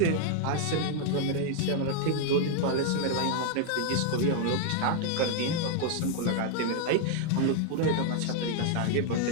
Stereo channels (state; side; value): different; both; correlation 0.00